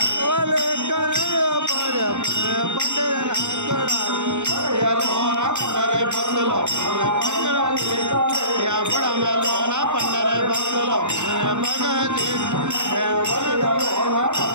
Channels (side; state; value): left; late; 0.84 ms